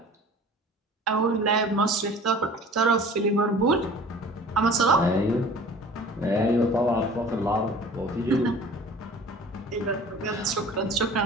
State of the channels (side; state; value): both; normal; correlation 0.45